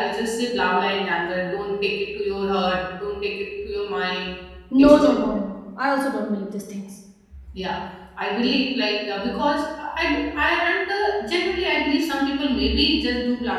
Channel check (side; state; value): both; identical; correlation 1.00